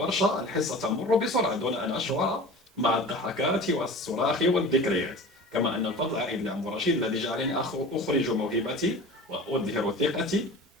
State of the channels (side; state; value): both; normal; correlation 0.37